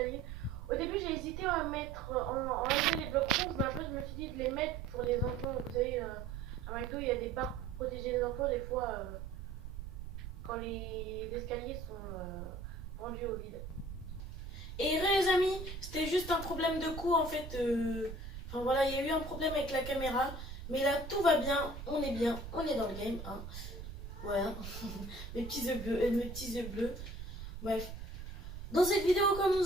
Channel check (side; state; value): right; noise; rumble, 9 dB below the sound